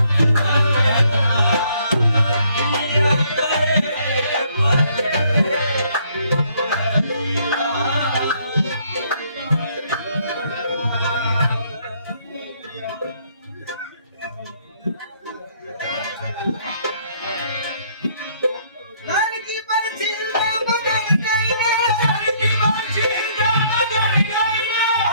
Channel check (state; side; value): inverted; both; correlation -0.66